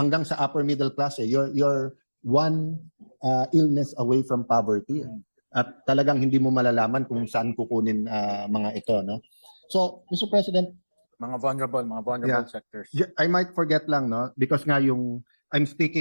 sa upper middle class eh, you're one illness away from poverty. At talagang hindi mo malalaman kung saan kukunin mga ito, no? So, Mr. President, Mga vulnerable sectors. I might forget lang, no? Because nga yung, I'm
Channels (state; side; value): inverted; both; correlation -1.00